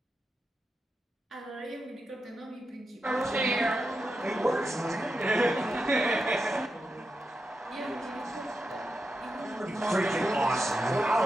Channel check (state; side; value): normal; both; correlation 0.88